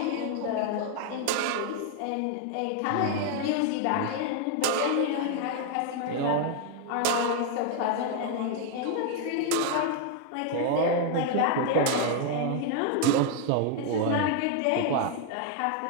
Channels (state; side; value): different; both; correlation 0.00